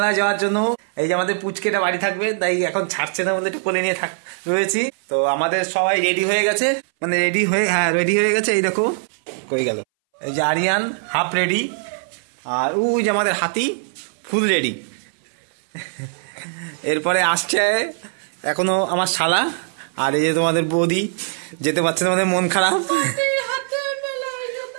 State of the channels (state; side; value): silent; left; 62 dB below the other